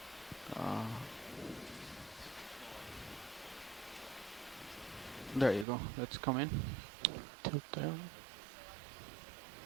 There you go. Let's come in. Tilt down.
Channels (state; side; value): drops out; left; at 5.7 s